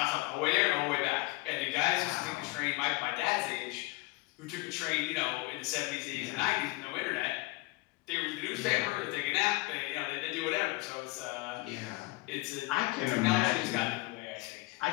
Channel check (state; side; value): quieter; right; 22.4 dB